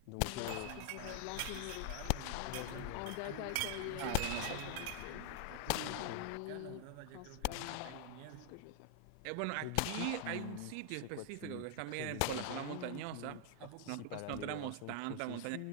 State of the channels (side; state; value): both; different; correlation 0.00